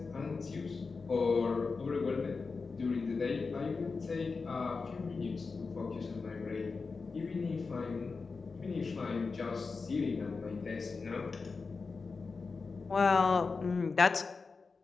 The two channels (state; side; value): quieter; right; 4.5 dB